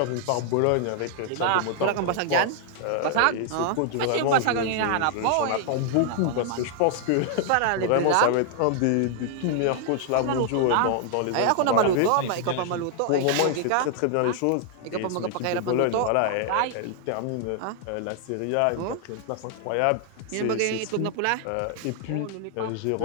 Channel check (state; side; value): different; both; correlation 0.00